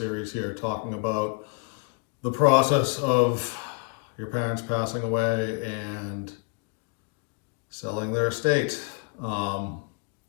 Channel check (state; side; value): quieter; right; 33.3 dB